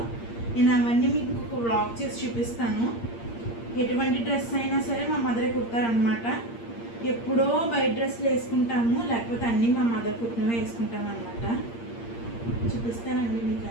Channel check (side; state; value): right; late; 8.6 ms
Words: నేను అవన్నీ మీకు ఇంకొక వ్లాగ్ చేసి చూపిస్తాను. ఎటువంటి డ్రెస్ అయినా సరే మా మదరే కుడతారనమాట. ఎప్పుడో బయట డ్రెస్సులు వేసుకుంటాము, లేకపోతే అన్నీ మా మదర్ కుట్టినవే వేసుకుంటాం అనమాట. చూపిస్తానండి మీకు